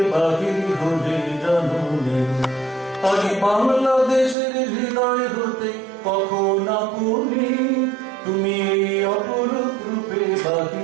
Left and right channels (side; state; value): left; drops out; at 4.4 s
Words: বাহির হলে জানুনে। আজি বাংলাদেশের হৃদয় হতে কখনো বলি, তুমি এই অপরূপ রূপে